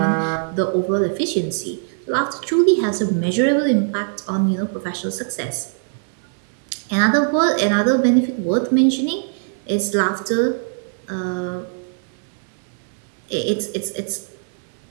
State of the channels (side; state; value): left; silent; digital silence